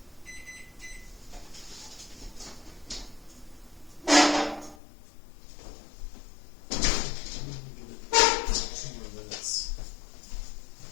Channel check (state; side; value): drops out; right; at 4.8 s